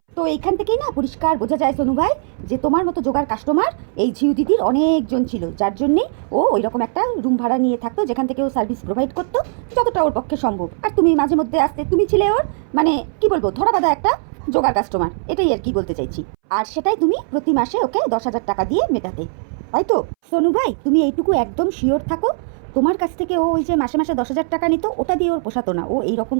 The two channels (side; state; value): left; silent; 64 dB below the other